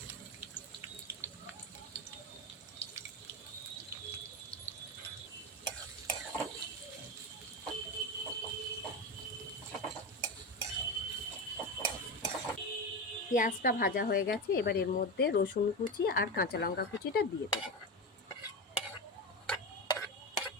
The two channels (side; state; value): both; normal; correlation 0.19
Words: পেঁয়াজটা ভাজা হয়ে গেছে, এবার এর মধ্যে রসুন কুচি আর কাঁচা লঙ্কা কুচিটা দিয়ে দেব।